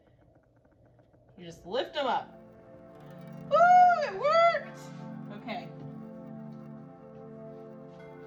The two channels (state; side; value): identical; both; correlation 1.00